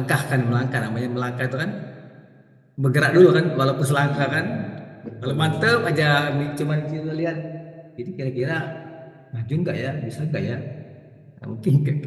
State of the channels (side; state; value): both; identical; correlation 1.00